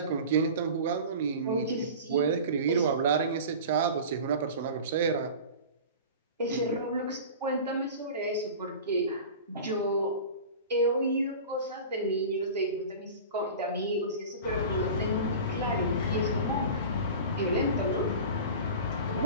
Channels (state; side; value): inverted; both; correlation -0.35